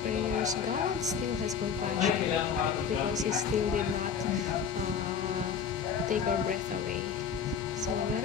prayers. God still has compassion because He still did not take our breath away. So let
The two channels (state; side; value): quieter; right; 6.9 dB